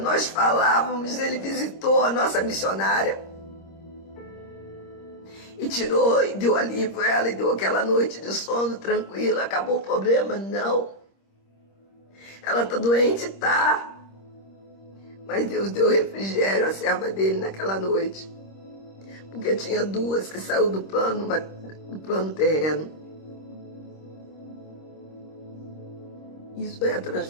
falávamos, Ele visitou a nossa missionária e tirou e deu alívio a ela e deu aquela noite de sono tranquila. Acabou o problema? Não. Ela está doente? Tá. Mas Deus deu refrigério à serva dele naquela noite, porque tinha 2 que saiu do plano terreno. Isso é a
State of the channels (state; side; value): late; right; 26 ms